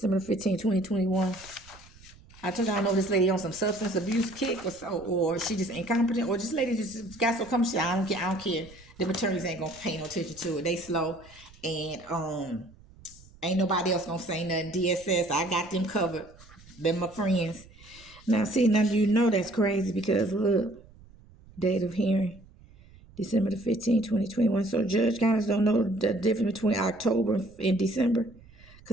15, 2021. I told y'all, know this lady on some substance abuse kick or she just incompetent. Or this lady just got so comfortable. I don't care. The attorneys ain't gonna pay no attention to it. They slow, and ain't nobody else gonna say nothing. DSS, I got them covered. They're my friends. Now, see, now you know that's crazy because look, date of hearing, December the 15th, 2021. So Judge Conits don't know the difference between October and December?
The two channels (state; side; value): noise; right; rumble, 23 dB below the sound